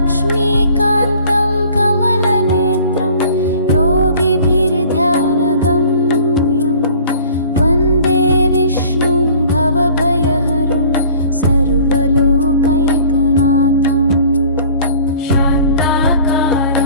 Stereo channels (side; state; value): both; inverted; correlation -0.50